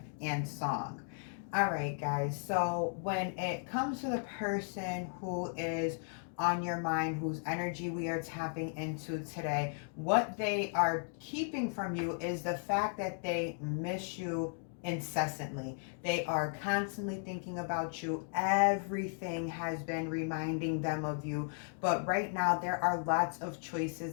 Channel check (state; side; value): silent; right; 54 dB below the other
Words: and Song. All right, guys. So when it comes to the person who is on your mind, whose energy we are tapping into today, what they are keeping from you is the fact that they miss you incessantly. They are constantly thinking about you. Everything has been reminding them of you. But right now, there are lots of